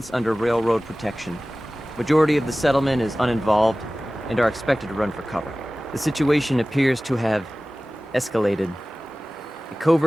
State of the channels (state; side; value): normal; both; correlation 0.97